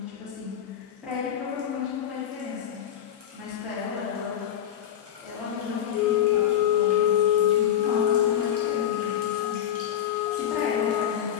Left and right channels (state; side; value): quieter; right; 10.2 dB